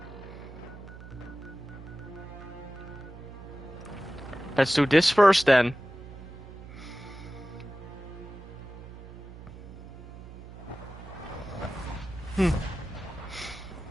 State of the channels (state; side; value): noise; right; hum, 14 dB below the sound